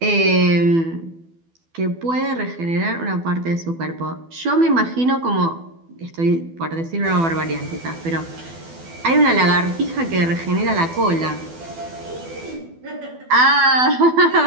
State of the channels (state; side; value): late; left; 12 ms